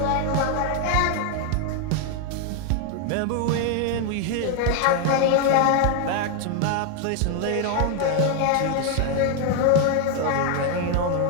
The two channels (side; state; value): both; different; correlation 0.01